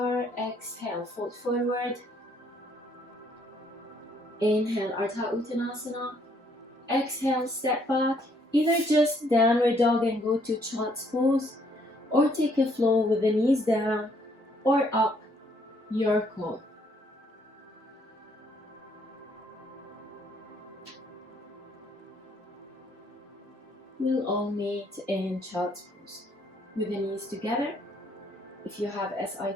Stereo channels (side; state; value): both; normal; correlation 0.67